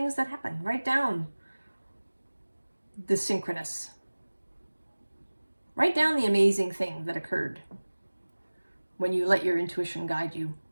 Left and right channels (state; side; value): inverted; both; correlation -1.00